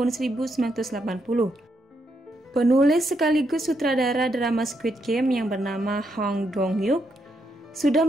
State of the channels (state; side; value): normal; both; correlation 0.79